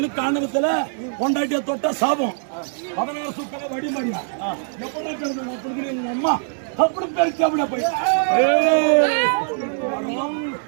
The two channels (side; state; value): left; silent; digital silence